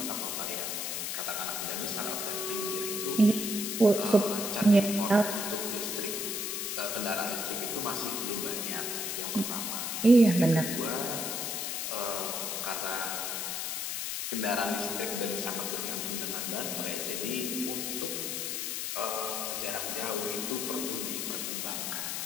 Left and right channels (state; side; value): noise; left; hiss, 2 dB below the sound